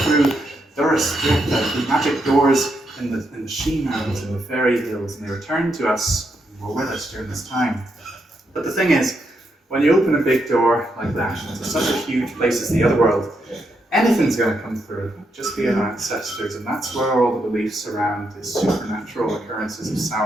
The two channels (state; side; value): normal; both; correlation 0.80